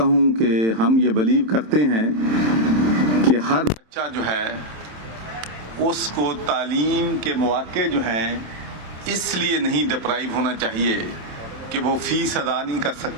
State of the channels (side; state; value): left; late; 27 ms